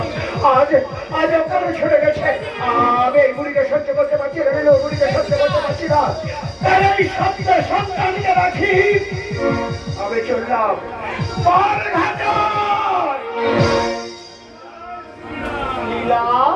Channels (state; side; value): identical; both; correlation 1.00